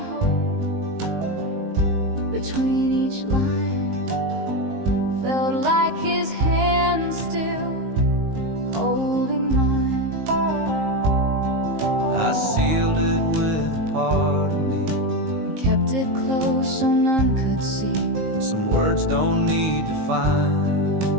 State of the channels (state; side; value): late; left; 19 ms